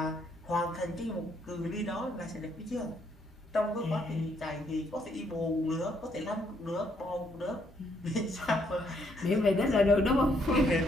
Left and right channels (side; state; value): both; normal; correlation 0.71